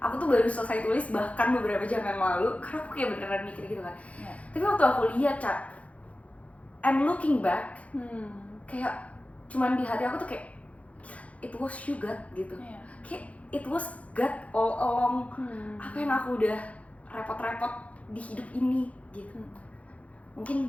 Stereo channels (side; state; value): right; late; 0.066 ms